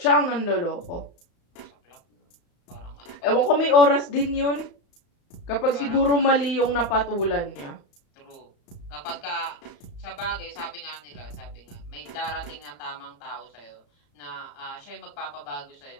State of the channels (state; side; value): late; right; 35 ms